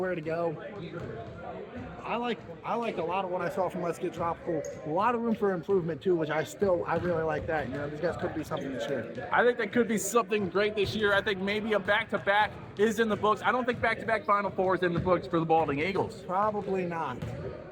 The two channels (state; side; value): identical; both; correlation 1.00